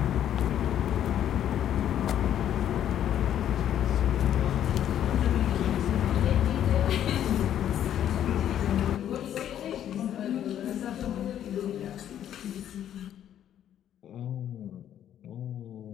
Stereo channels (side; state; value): right; quieter; 10.6 dB